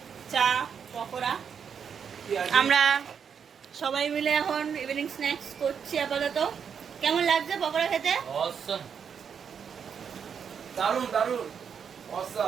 চা পকোড়া। আমরা সবাই মিলে এখন ইভিনিং স্ন্যাক্স করছি আপাতত। কেমন লাগছে পকোড়া খেতে? দারুন দারুন,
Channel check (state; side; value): quieter; left; 7.1 dB